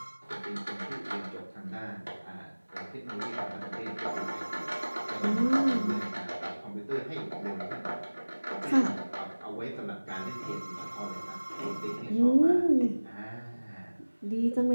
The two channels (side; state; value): both; inverted; correlation -1.00